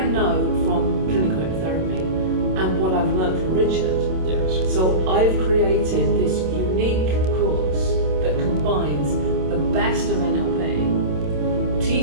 know from clinical hypnotherapy and what I've learned from Richard. Yes. So I've created this unique course that combines the best of NLP,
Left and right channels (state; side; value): late; left; 27 ms